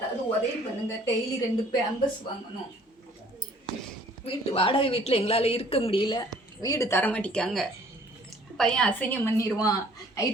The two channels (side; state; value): both; normal; correlation 0.56